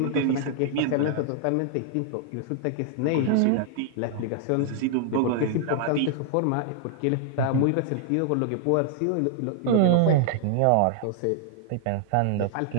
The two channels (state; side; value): different; both; correlation -0.01